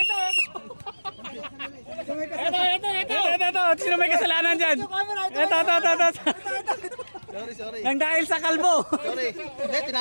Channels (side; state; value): both; inverted; correlation -1.00